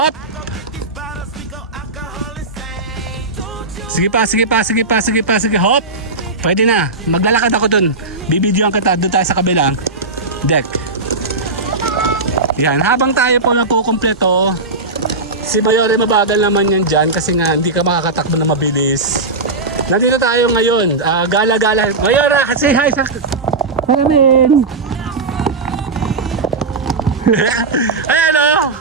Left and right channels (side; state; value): left; quieter; 3.4 dB